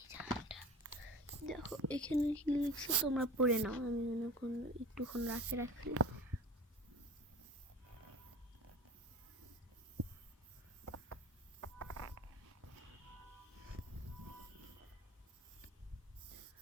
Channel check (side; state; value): both; normal; correlation 0.36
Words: দেখো এখানে কি লিখছে, তোমরা পড়ে নাও, আমি একটুক্ষণ রাখি।